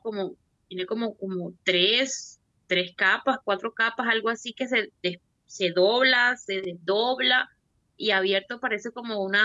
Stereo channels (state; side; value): identical; both; correlation 1.00